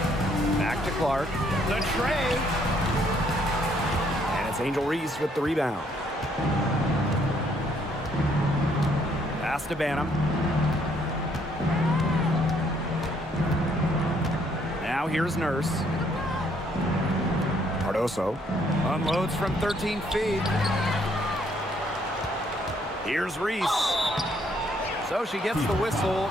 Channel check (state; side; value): normal; both; correlation 0.68